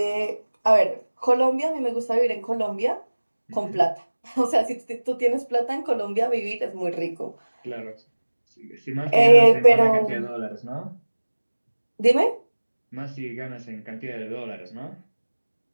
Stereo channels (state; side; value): inverted; both; correlation -1.00